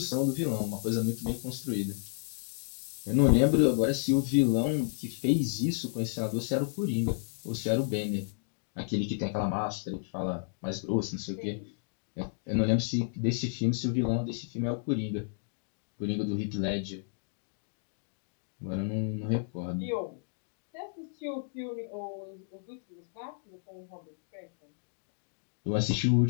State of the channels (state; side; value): silent; right; digital silence